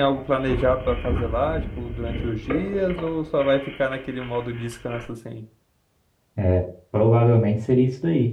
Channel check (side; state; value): both; identical; correlation 1.00